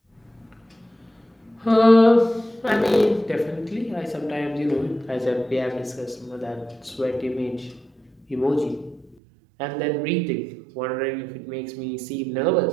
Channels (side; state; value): left; drops out; at 9.2 s